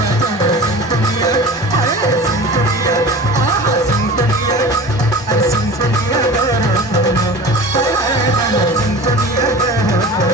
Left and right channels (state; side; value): normal; both; correlation 0.37